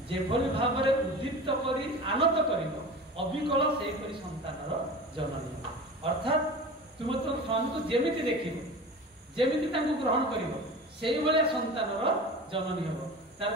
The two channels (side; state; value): both; normal; correlation 0.34